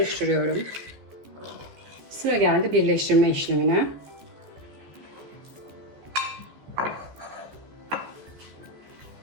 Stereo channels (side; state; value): left; late; 14 ms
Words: Sıra geldi birleştirme işlemine.